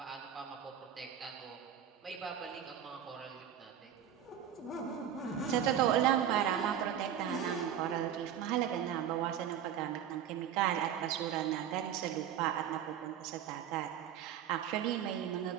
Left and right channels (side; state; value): left; quieter; 9.6 dB